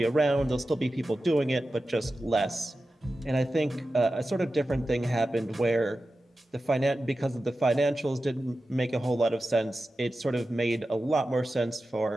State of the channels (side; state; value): both; normal; correlation 0.93